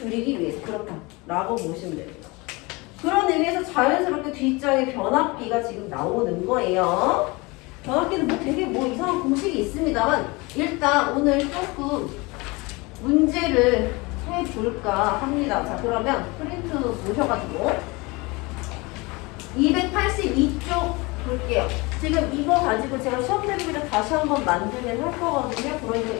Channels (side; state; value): right; quieter; 25.1 dB